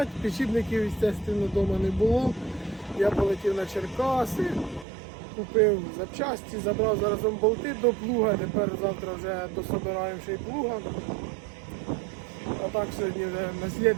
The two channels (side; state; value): left; drops out; at 4.9 s